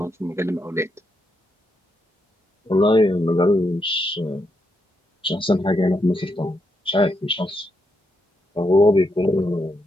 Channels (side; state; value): both; normal; correlation 0.81